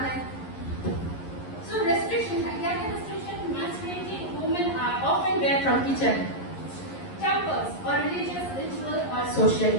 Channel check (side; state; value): right; late; 11 ms